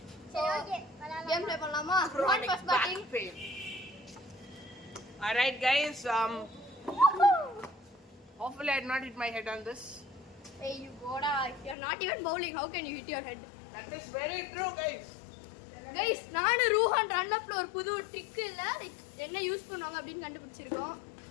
கேம் பிளே பண்ணலாமா? Ruhan first batting. Alright guys, hopefully I did not hit my head on this. Hey you goda, you're not even bowling, how can you hit your head? That is very true guys. Guys, நானு ரூஹான் run அப்ல ஒரு புது trick இல்ல, like என்ன use பண்ணுவாங்க அப்படினு கண்டுபிடிச்சிருக்கோம்.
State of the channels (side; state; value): right; drops out; at 11.8 s